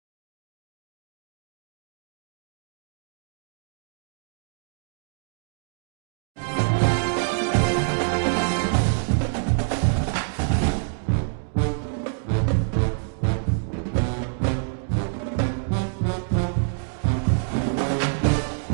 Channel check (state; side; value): silent; left; digital silence